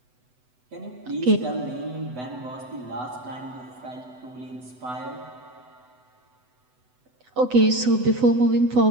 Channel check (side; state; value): left; late; 8.0 ms